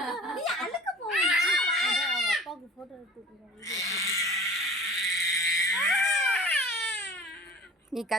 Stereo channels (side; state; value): both; normal; correlation 0.43